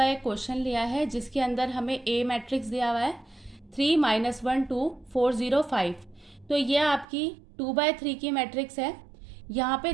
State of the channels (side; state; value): left; drops out; at 7.1 s